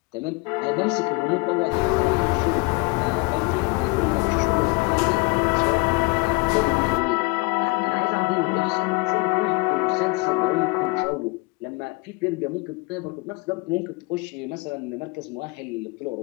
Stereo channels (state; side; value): quieter; right; 26.2 dB